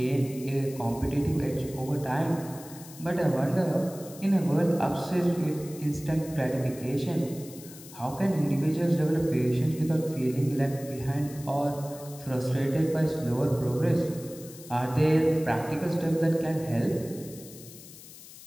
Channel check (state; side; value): noise; left; hiss, 17 dB below the sound